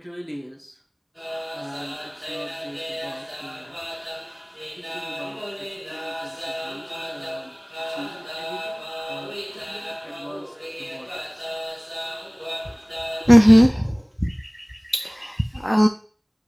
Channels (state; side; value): identical; both; correlation 1.00